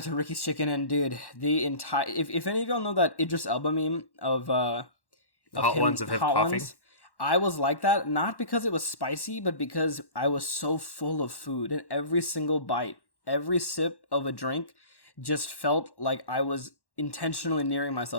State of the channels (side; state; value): right; late; 1.1 ms